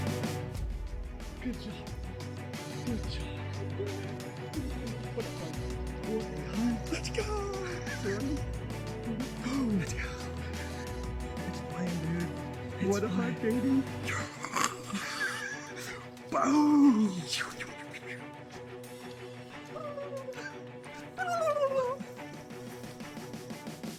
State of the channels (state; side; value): identical; both; correlation 1.00